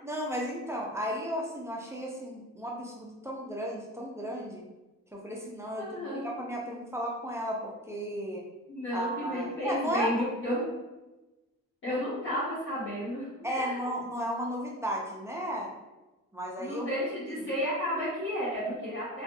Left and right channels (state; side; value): normal; both; correlation 0.33